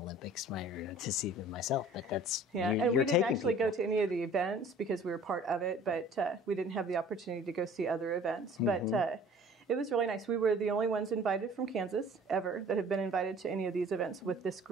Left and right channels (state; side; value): normal; both; correlation 0.49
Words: to see them myself, but that's and we didn't actually go to any of the events because we were part of it, but we didn't have the opportunity to go see other events. But it was really nice. We were the only ones invited from Kansas ever that have been invited to any of these events with this